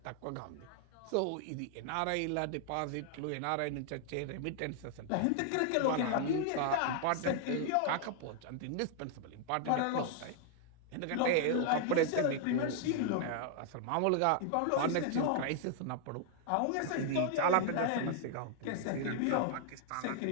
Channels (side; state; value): both; different; correlation 0.00